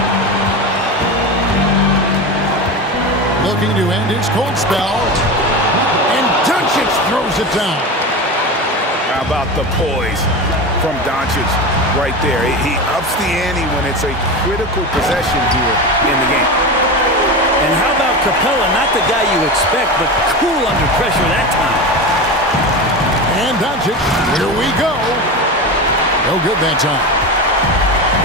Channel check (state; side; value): normal; both; correlation 0.24